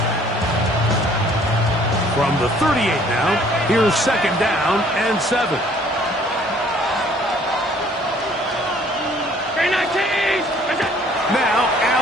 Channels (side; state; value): both; normal; correlation 0.58